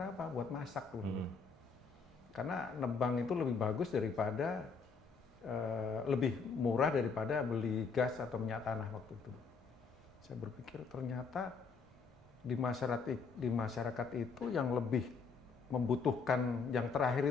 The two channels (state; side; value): quieter; right; 5.1 dB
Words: apa? Buat masak tuh. Karena nebang itu lebih bagus daripada, lebih murah daripada beli gas atau minyak tanah waktu itu. Saya berpikir ternyata di masyarakat itu yang lebih membutuhkan yang